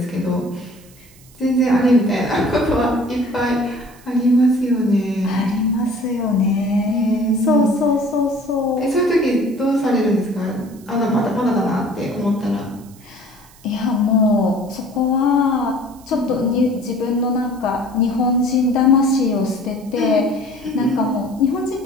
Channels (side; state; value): right; noise; hiss, 26 dB below the sound